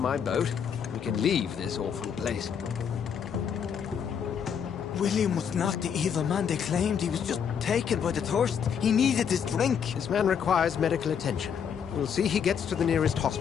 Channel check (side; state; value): right; quieter; 7.5 dB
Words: boat. We can leave this awful place. William was not the evil man they claimed. He was just taken by the thirst. He needed his drink. This man requires medical attention. We'll see he gets to the nearest